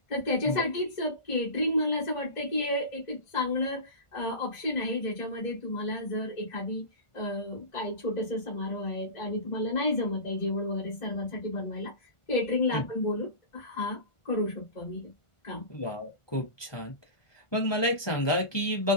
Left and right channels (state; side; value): late; right; 1.5 ms